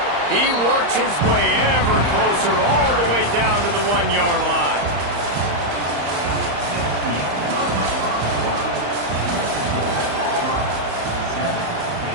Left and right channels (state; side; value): late; left; 35 ms